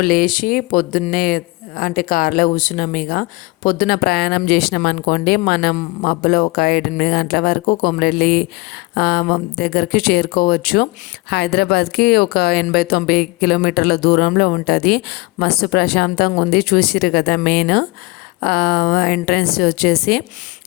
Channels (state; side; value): quieter; right; 23.8 dB